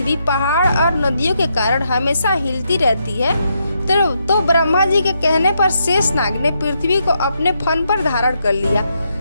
पहाड़ और नदियों के कारण हमेशा हिलती रहती है। तो ब्रह्मा जी के कहने पर शेषनाग ने पृथ्वी को अपने फन पर धारण कर लिया।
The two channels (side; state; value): both; inverted; correlation -0.80